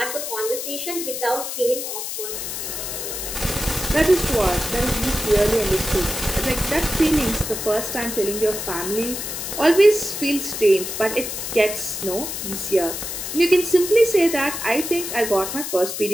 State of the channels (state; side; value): noise; left; hiss, 5 dB below the sound